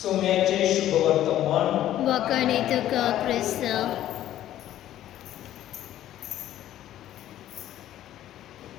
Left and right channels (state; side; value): quieter; right; 12.7 dB